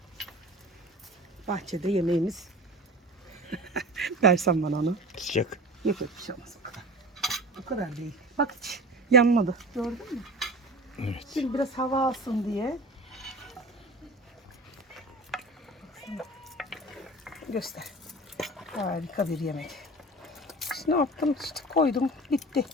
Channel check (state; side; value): normal; both; correlation 0.36